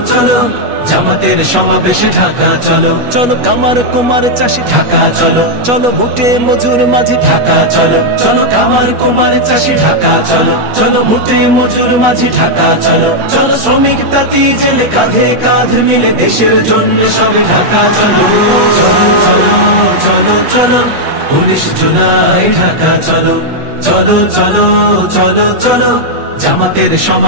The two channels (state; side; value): late; left; 8.3 ms